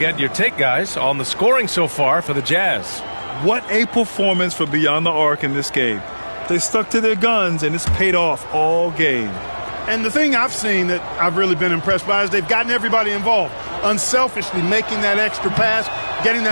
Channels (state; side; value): inverted; both; correlation -1.00